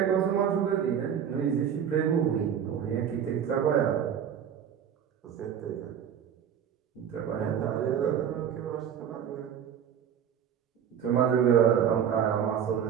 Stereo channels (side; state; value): left; quieter; 8.6 dB